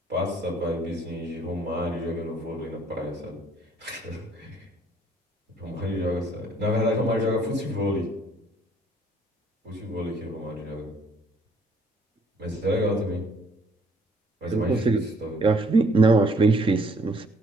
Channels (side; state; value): both; normal; correlation 0.62